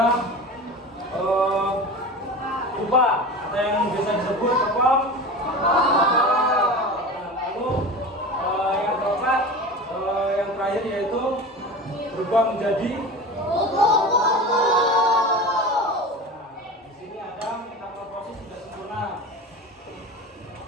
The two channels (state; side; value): normal; both; correlation 0.31